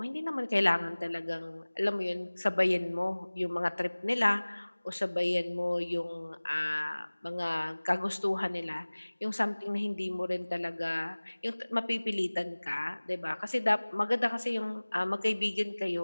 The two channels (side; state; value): both; inverted; correlation -1.00